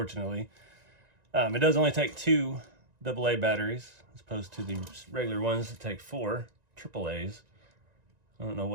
It does only take 2 AA batteries as opposed to the regular ones that take 4 AAAs. I don't know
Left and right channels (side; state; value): left; late; 1.9 ms